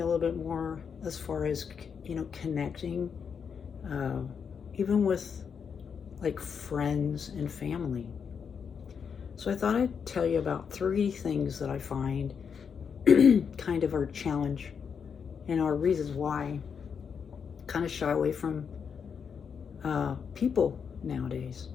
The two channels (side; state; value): right; quieter; 6.7 dB